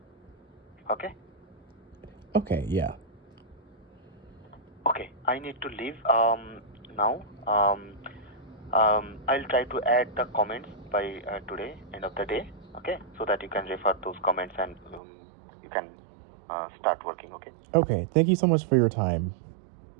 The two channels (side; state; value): left; drops out; at 15.0 s